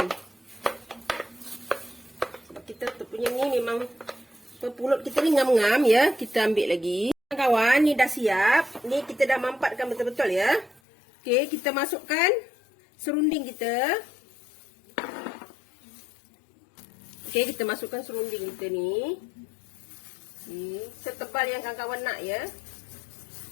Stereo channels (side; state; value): right; drops out; at 10.8 s